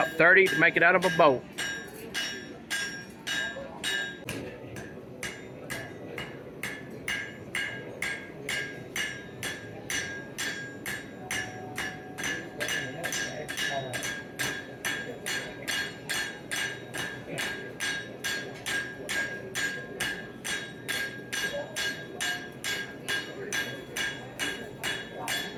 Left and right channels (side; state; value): both; identical; correlation 1.00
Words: 30 to make it out of a boat.